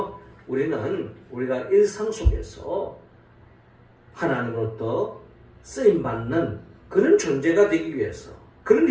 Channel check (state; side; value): identical; both; correlation 1.00